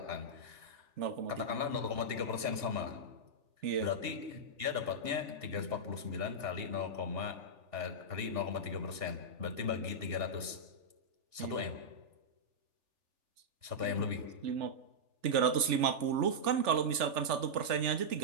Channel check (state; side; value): late; left; 3.4 ms